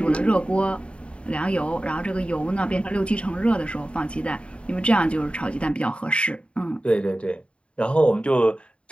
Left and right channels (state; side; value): late; right; 0.058 ms